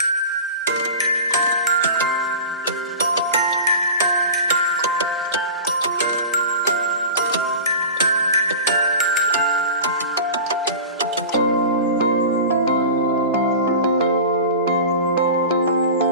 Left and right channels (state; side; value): inverted; both; correlation -0.34